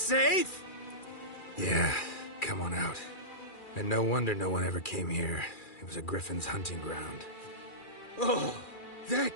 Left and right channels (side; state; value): right; late; 2.4 ms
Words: Yeah, come on out. And no wonder no one ever came here. It was a griffin's hunting ground. Oh,